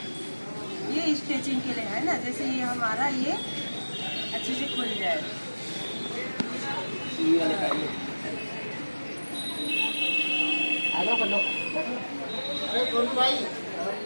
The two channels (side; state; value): both; inverted; correlation -1.00